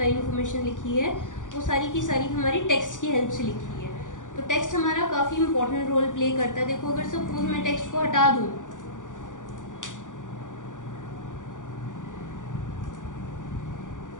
इन्फॉर्मेशन लिखी है वो सारी की सारी हमारी टेक्स्ट की हेल्प से लिखी है। तो टेक्स्ट हमारा काफ़ी इंपॉर्टेंट रोल प्ले करता है। देखो अगर सपोज मैं टेक्स्ट को हटा दूँ,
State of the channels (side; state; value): right; late; 0.87 ms